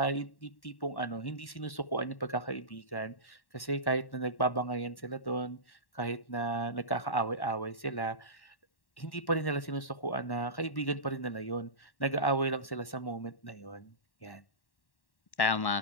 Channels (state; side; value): late; right; 1.1 ms